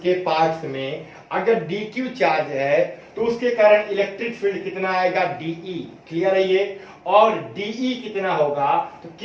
पार्ट्स में अगर dq चार्ज है तो उसके कारण इलेक्ट्रिक फील्ड कितना आएगा, dE। क्लियर है ये, और dE कितना होगा, तो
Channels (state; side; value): identical; both; correlation 1.00